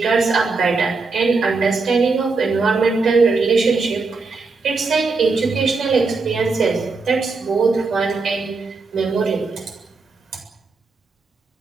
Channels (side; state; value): left; quieter; 4.1 dB